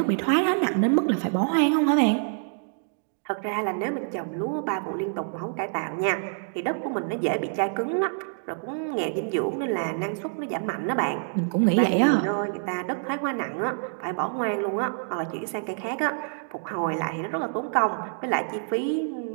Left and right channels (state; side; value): silent; left; digital silence